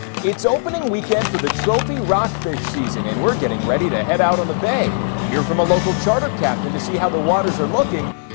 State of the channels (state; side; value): silent; right; digital silence